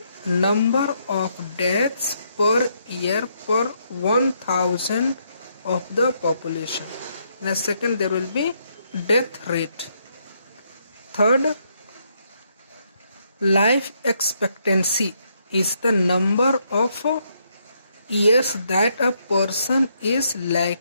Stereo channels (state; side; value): inverted; both; correlation -0.75